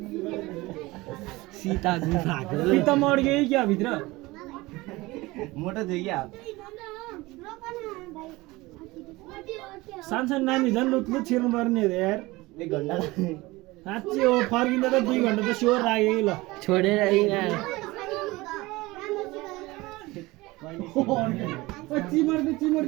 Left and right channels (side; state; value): left; quieter; 21.0 dB